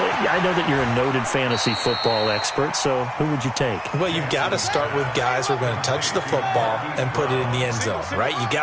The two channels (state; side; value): identical; both; correlation 1.00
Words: know that you're a noted fantasy football expert, so who would you take? Well, you've got to start with guys who are going to touch the football and put it in the end zone, right? You